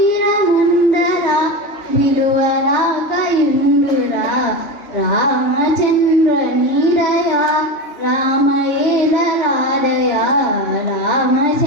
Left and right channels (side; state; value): right; late; 3.2 ms